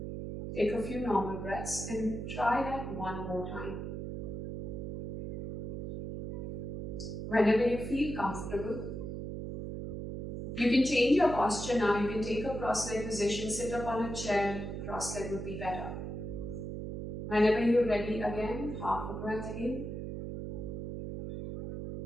Take a few normal breaths and try that one more time. Whenever you feel comfortable, you can change your posture now. You can take a cross-leg position, sit up on a chair. Cross-leg would be better. Whenever you're ready again, half a breath in.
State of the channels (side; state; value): right; noise; hum, 5 dB below the sound